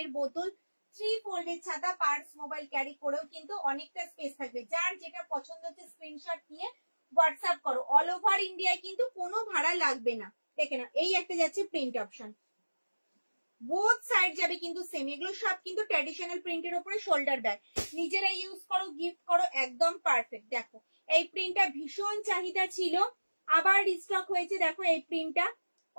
বোতল, 3 ফোল্ডের ছাতা, পার্স, মোবাইল ক্যারি করেও কিন্তু অনেকটা স্পেস থাকবে। যার যেটা পছন্দ হচ্ছে স্ক্রিনশট নিয়ে হোয়াটসঅ্যাপ করো। অল ওভার ইন্ডিয়ায় কিন্তু কোনো ভাড়া লাগবে না। দেখে না এই একটা যাচ্ছে প্রিন্ট অপশন, বোথ সাইড যাবে কিন্তু সেম। এগুলো সব কিন্তু ট্র্যাডিশনাল প্রিন্টের উপরে শোল্ডার ব্যাগ, নিজেরা ইউজ করো, গিফট করো, একদম পারফেক্ট। দেখো এই প্রিন্টটা ভীষণ চাহিদা ছিল, আবার রিস্টক হয়েছে। দেখো এই প্রিন্টটা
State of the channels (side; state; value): both; inverted; correlation -1.00